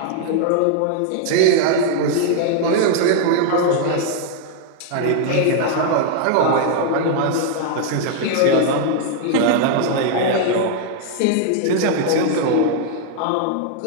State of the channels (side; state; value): both; different; correlation 0.00